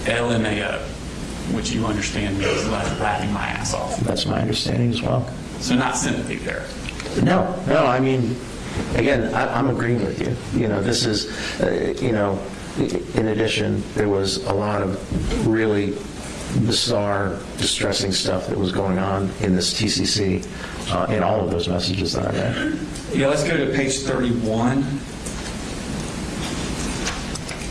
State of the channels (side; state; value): both; identical; correlation 1.00